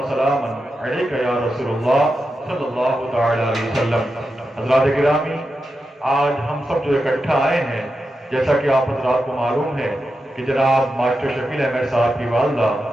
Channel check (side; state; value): both; normal; correlation 0.89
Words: سلام علیک یا رسول اللہ صلی اللہ تعالی علیہ وسلم. حضرات گرامی، آج ہم سب جو اکٹھا آئے ہیں، جیسا کہ آپ حضرات کو معلوم ہے کہ جناب ماسٹر شکیل احمد صاحب کی والدہ